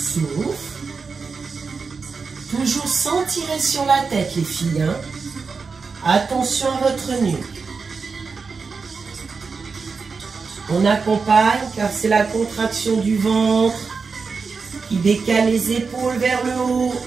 Toujours sans tirer sur la tête, les filles. Hein? Attention à votre nuque. On accompagne car c'est la contraction du ventre qui décale les épaules vers le haut.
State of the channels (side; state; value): left; quieter; 4.9 dB